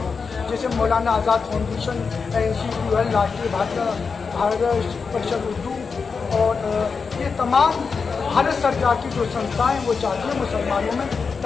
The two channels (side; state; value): right; quieter; 5.2 dB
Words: जैसे मौलाना आज़ाद फाउंडेशन, NCQL, राष्ट्रीय भारत परिषद उर्दू और ये तमाम भारत सरकार की जो संस्थाएं वो चाहती हैं मुसलमानों में